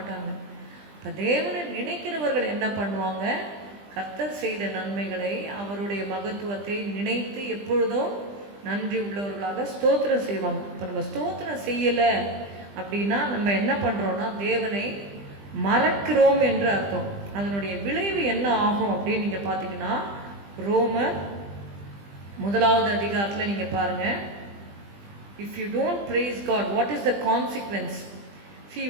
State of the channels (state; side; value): late; left; 20 ms